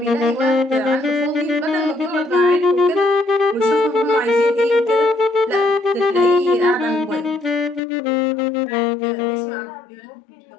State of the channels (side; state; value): right; drops out; at 7.8 s